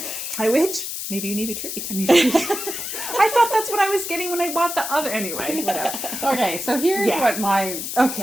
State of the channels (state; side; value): noise; left; hiss, 5 dB below the sound